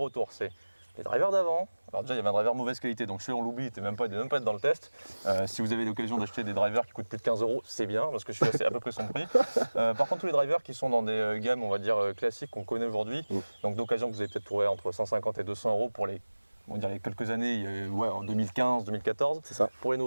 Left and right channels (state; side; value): inverted; both; correlation -1.00